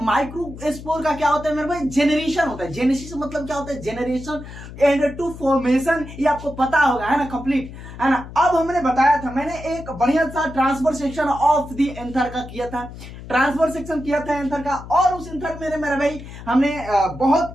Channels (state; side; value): noise; left; hum, 14 dB below the sound